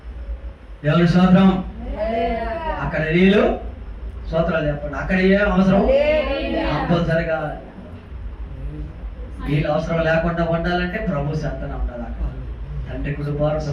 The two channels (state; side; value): identical; both; correlation 1.00